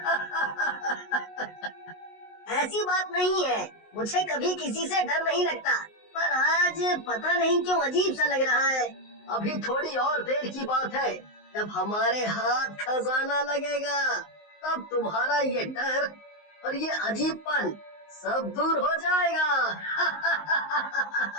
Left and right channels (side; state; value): right; late; 19 ms